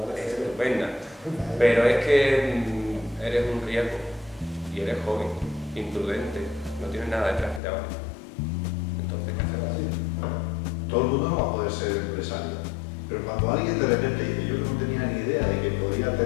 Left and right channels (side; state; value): right; drops out; at 7.6 s